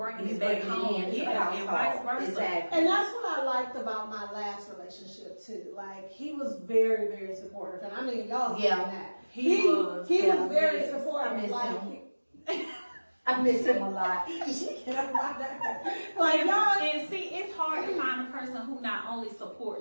it back home. Yeah, and vice versa. Exactly. And that's what I liked about my last relationship too. Like he was very, very supportive, and I mean y'all seen that. He was very supportive. I miss him a lot. Like y'all, and see, it's hard to find a person who not only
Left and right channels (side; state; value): both; inverted; correlation -1.00